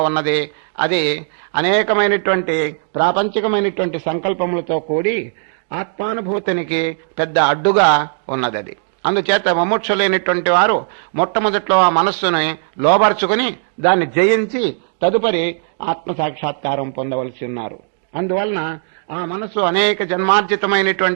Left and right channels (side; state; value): left; silent; digital silence